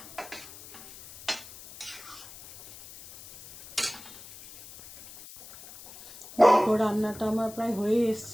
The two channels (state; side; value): noise; left; hiss, 18 dB below the sound